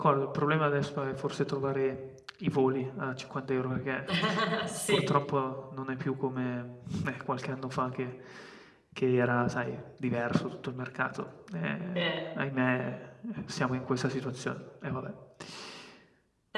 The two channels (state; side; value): identical; both; correlation 1.00